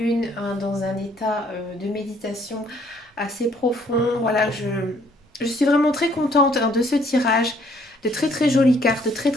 hein, dans un état de méditation assez profond. Voilà, je suis vraiment très contente, hein, de ce tirage. De très très jolies cartes, de très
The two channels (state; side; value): normal; both; correlation 0.64